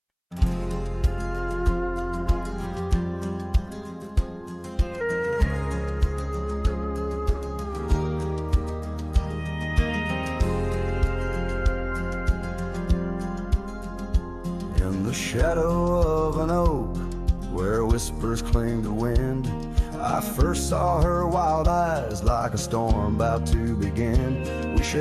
The shadow of an oak where whispers cling to wind, I first saw her wild eyes like a storm about to begin. We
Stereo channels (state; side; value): identical; both; correlation 1.00